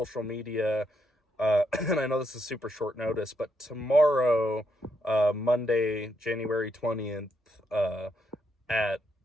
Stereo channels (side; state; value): both; normal; correlation 0.78